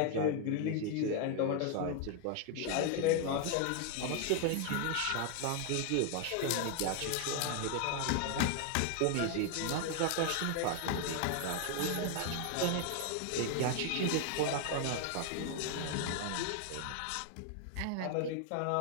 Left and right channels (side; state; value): both; different; correlation 0.00